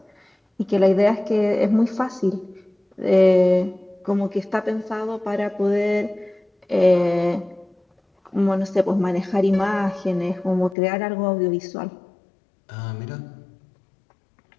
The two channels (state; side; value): drops out; right; at 10.8 s